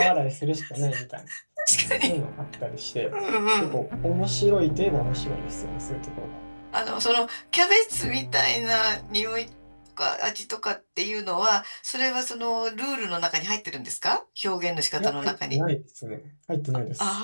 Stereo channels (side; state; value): both; inverted; correlation -1.00